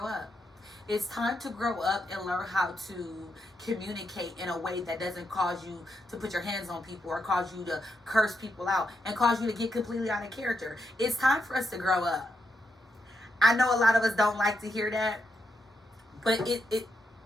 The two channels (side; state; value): both; normal; correlation 0.83